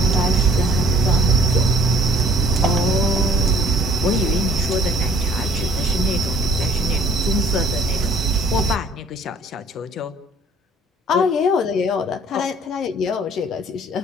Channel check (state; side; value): normal; both; correlation 0.56